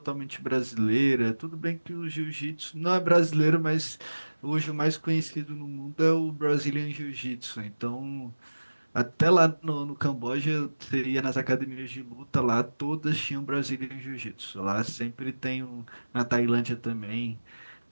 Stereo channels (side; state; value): both; inverted; correlation -1.00